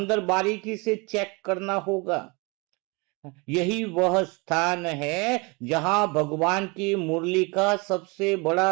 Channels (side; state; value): left; quieter; 28.2 dB